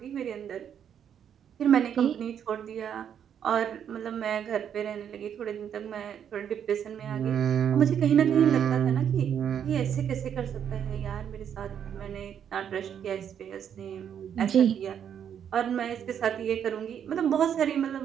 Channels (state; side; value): quieter; left; 8.7 dB